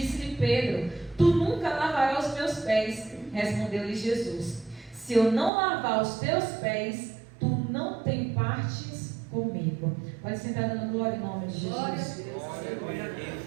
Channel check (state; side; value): drops out; left; at 5.5 s